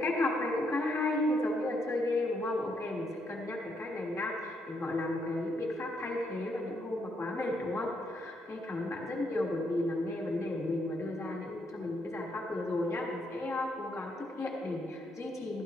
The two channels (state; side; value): normal; both; correlation 0.76